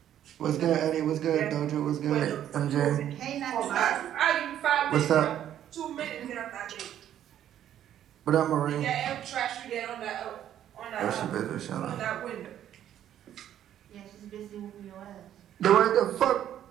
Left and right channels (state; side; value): quieter; left; 10.9 dB